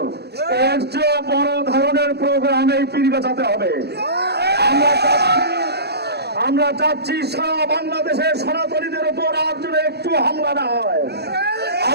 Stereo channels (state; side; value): late; left; 0.48 ms